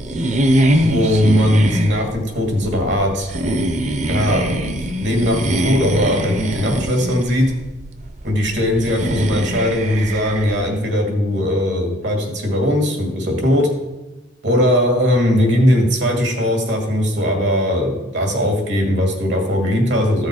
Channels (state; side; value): normal; both; correlation 0.60